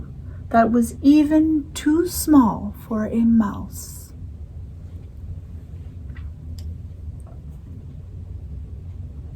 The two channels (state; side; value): identical; both; correlation 1.00